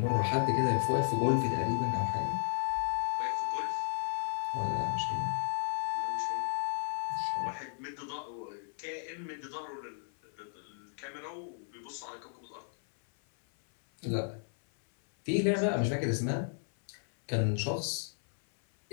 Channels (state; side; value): silent; right; 55 dB below the other